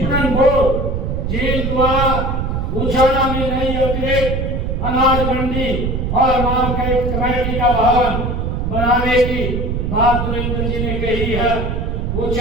बोर्ड जेल द्वारा उचाना में नई अतिरिक्त अनाज मंडी और मार्केट कमेटी का भवन बनाने की बात देवेंद्र जी ने कही है।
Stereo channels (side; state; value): right; noise; rumble, 1 dB below the sound